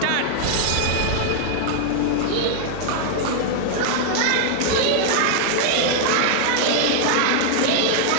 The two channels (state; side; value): different; both; correlation -0.01